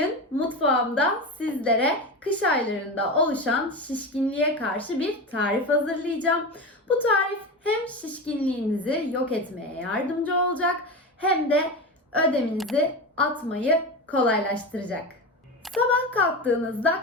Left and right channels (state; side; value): normal; both; correlation 0.23